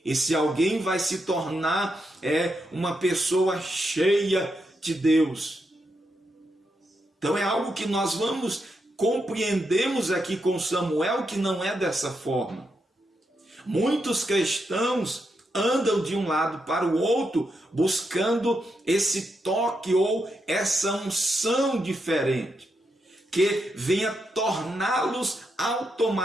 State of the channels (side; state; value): both; normal; correlation 0.83